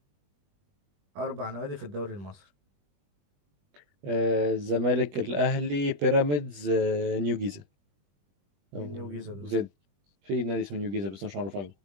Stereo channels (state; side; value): late; left; 21 ms